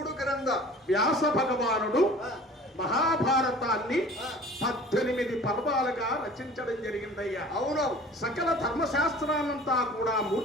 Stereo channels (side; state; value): both; normal; correlation 0.45